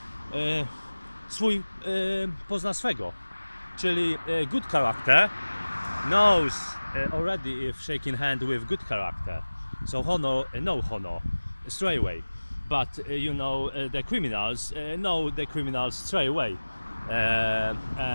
swój pozna swego, czyli good character knows already if shaking hand with good character, so honor, no honor straight away, but the criminals know the criminals straight away,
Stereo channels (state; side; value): inverted; both; correlation -1.00